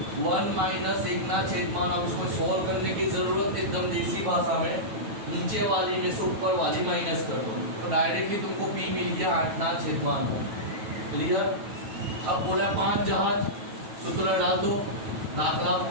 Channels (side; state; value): left; late; 9.2 ms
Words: 1 माइनस 1/। अब इसको सॉल्व करने की जरूरत एकदम देसी भाषा में नीचे वाली में से ऊपर वाली माइनस कर दो तो डायरेक्टली तुमको p मिल गया 8/9। क्लियर। अब बोला 5 जहाज सूत्र डाल दो दाखला